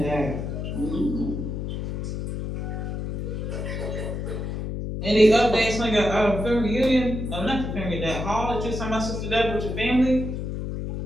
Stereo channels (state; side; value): noise; left; hum, 4 dB below the sound